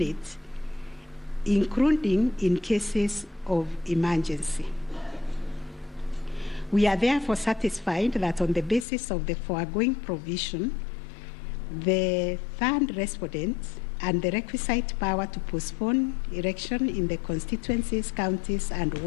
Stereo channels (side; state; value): right; drops out; at 8.8 s